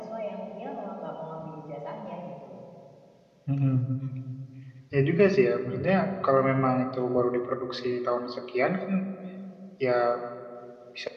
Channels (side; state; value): both; identical; correlation 1.00